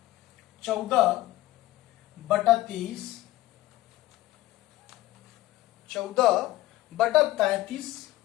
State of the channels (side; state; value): right; quieter; 16.6 dB